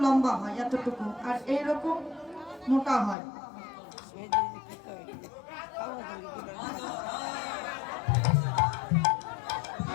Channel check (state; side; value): drops out; right; at 3.2 s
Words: লম্বা হয় এতটুকু, আর এইরকম মোটা হয়।